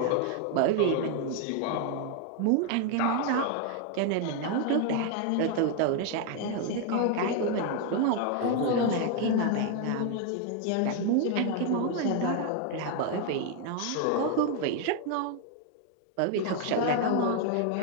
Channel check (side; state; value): both; different; correlation 0.01